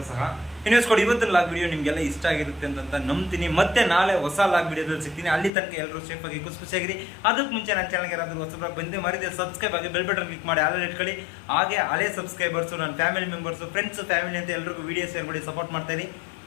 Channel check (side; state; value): right; drops out; at 5.5 s